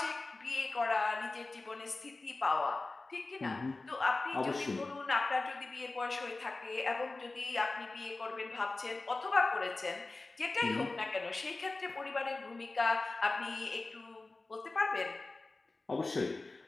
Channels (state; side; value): quieter; right; 3.3 dB